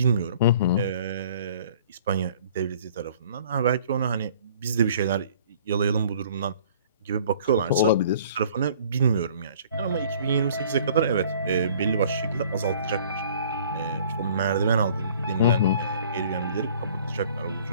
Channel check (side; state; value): both; inverted; correlation -0.53